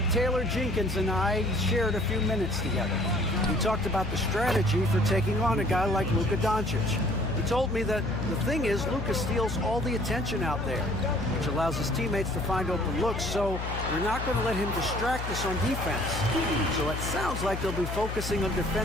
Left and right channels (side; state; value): left; noise; hum, 5 dB below the sound